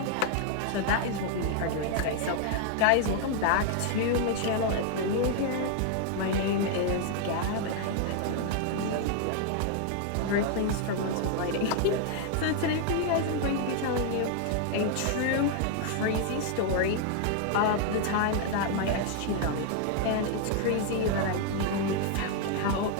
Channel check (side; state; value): both; different; correlation 0.00